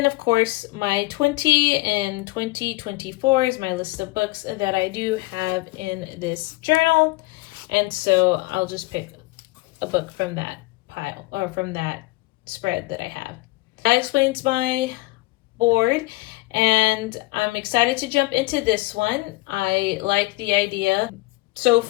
of course, my 20 and 2024 is my list of books that I do have in this journal. And so I'll just pick a book from that pile or from that spread that I have. That explains my board, and I'm excited to jump into this one. I like the idea so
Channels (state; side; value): quieter; right; 21.2 dB